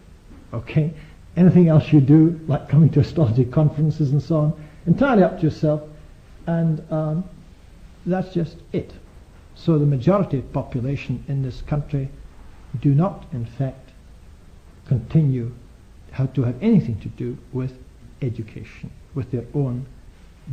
Okay? Anything else you do, like coming to astrology conferences and so on, entirely up to yourself, and that's just it. So the majority of the population in this country do not, in fact, continue to have anything to do with education, with their own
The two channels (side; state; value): both; identical; correlation 1.00